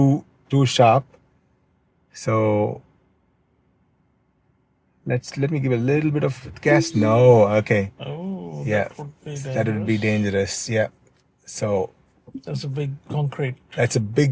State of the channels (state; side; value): identical; both; correlation 1.00